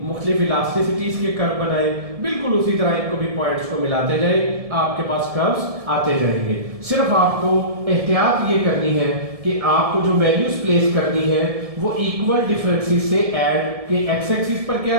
मुख्तलिफ इलास्टिसिटीज के कर्व बनाए, बिल्कुल उसी तरह इनको भी पॉइंट्स को मिलाते जाए, आपके पास कर्व्स आते जाएंगे। सिर्फ आपको एहतियात ये करनी है कि आपको जो वैल्यूज प्लेस करनी है वो इक्वल डिफरेंसेस से ऐड के एक्स एक्सिस पर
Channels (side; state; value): left; late; 1.7 ms